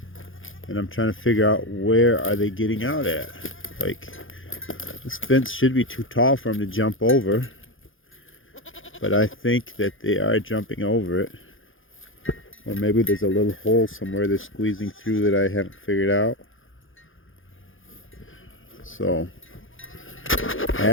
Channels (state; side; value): late; right; 0.58 ms